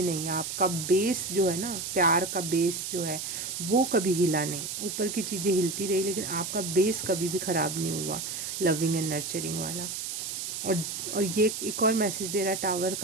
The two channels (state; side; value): noise; right; hiss, 5 dB below the sound